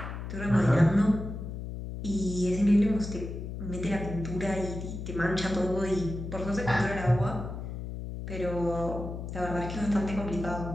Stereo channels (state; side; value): noise; left; hum, 7 dB below the sound